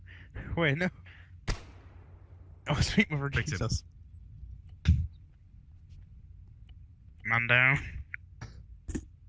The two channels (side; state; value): both; identical; correlation 1.00